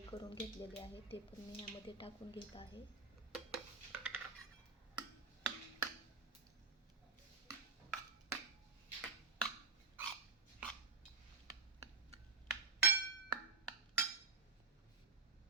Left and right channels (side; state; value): left; quieter; 4.1 dB